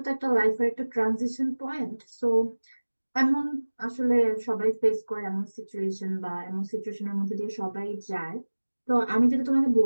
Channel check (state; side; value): inverted; both; correlation -1.00